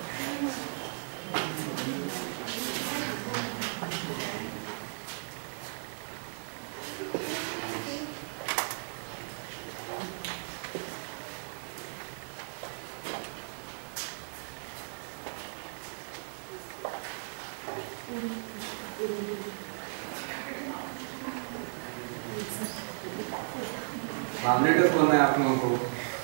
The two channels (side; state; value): left; silent; digital silence